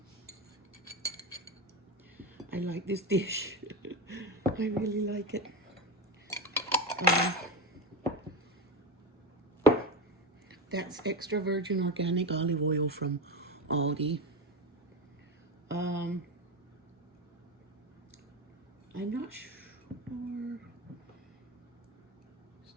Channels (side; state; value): both; normal; correlation 0.17